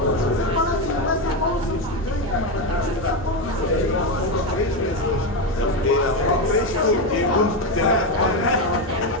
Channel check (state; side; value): normal; both; correlation 0.11